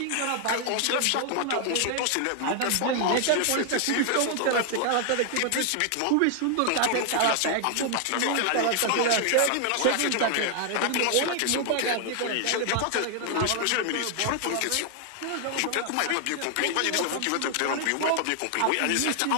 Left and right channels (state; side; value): different; both; correlation 0.00